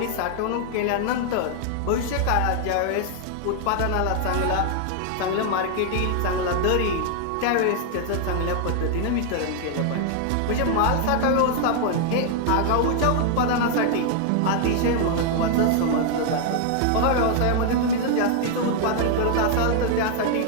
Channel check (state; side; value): different; both; correlation 0.00